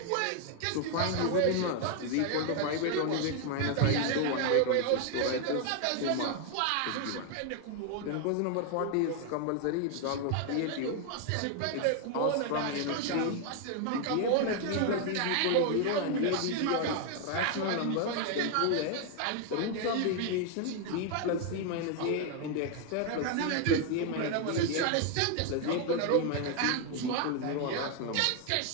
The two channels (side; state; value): both; different; correlation 0.00